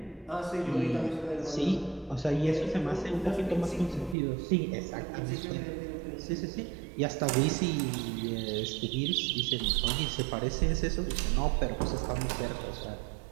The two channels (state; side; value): drops out; left; at 4.2 s